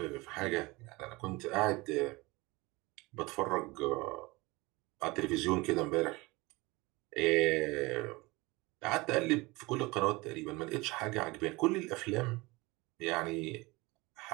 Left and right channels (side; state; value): left; quieter; 23.1 dB